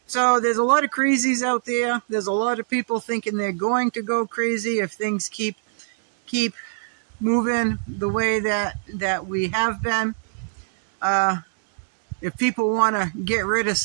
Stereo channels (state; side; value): silent; left; 63 dB below the other